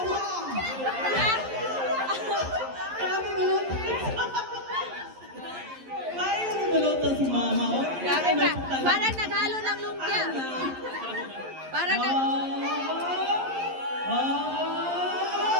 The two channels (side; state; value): left; late; 11 ms